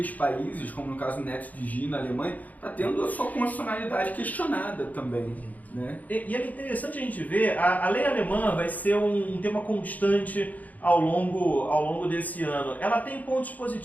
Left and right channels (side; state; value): right; late; 0.078 ms